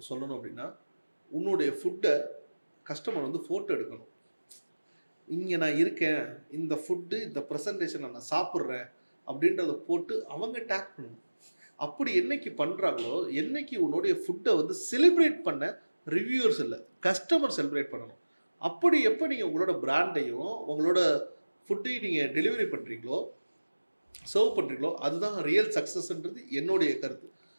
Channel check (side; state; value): both; inverted; correlation -1.00